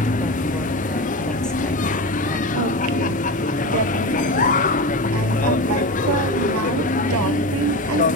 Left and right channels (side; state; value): both; normal; correlation 0.23